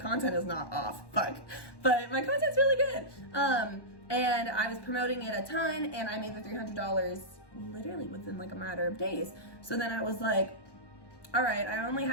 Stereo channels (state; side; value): late; right; 1.1 ms